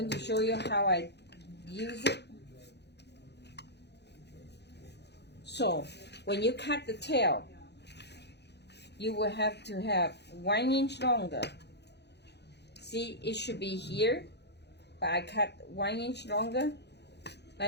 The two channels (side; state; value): right; late; 0.49 ms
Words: to show you how I use it. So when you cut the tail, you will have to have 1 inch longer. See, it should be here, but I cut 1 inch longer,